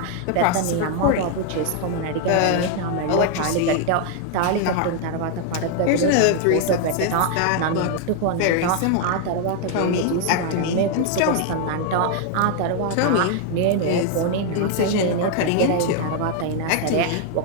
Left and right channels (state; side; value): different; both; correlation 0.00